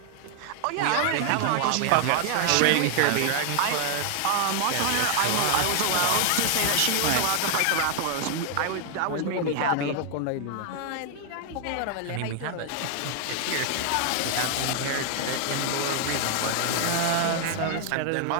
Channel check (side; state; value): both; different; correlation 0.00